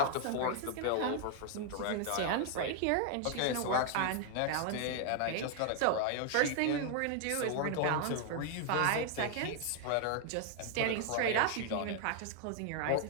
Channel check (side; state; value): both; different; correlation 0.00